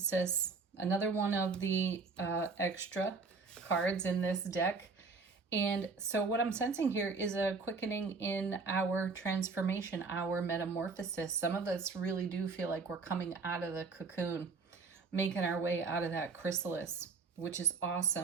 Another one of the extra cards in this deck. And so what I'm sensing here is a quickening in our transformation, our metamorphosis. Some of us really do feel like we're coming out of the cocoon, making our way out of that chrysalis, which is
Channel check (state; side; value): quieter; left; 4.4 dB